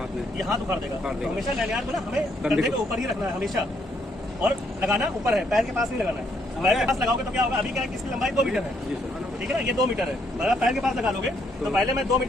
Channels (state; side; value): normal; both; correlation 0.72